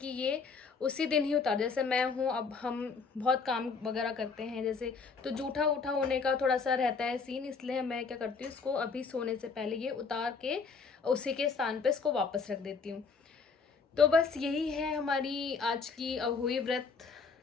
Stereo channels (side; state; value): right; quieter; 5.0 dB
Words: ये उसी दिन ही उतार, जैसे मैं हूँ, अब हम बहुत काम वगैरह करते हैं जैसे, तो जूठा उठा होने का थोड़ा सा रहता है सीन, इसलिए मैं क्या करती हूँ, इसको अभी सोने से पहले ये उतार के उसी के स्थान पे इसको वापस रख देती हूँ। तो बस यही है हमारी आज की अहोई व्रत,